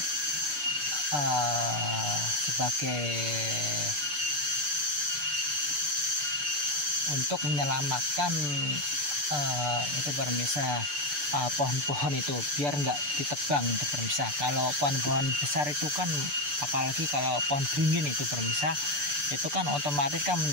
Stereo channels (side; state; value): left; late; 6.8 ms